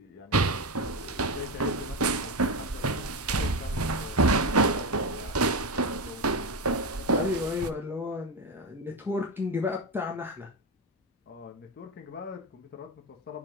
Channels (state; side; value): normal; both; correlation 0.15